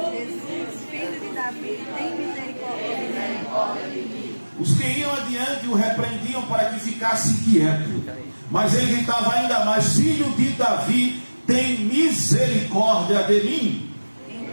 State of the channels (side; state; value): both; inverted; correlation -1.00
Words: Jesus, filho de Davi, tem misericórdia de mim. Os que iam adiante o repreendiam para que ficasse quieto. Mas ele gritava ainda mais: Filho de Davi, tem misericórdia de mim.